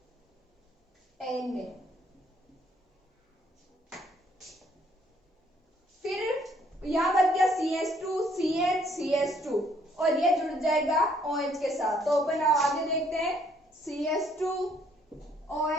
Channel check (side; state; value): both; normal; correlation 0.66